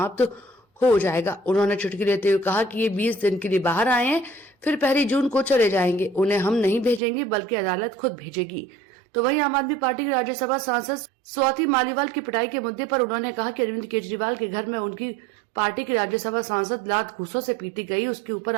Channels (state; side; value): drops out; left; at 7.0 s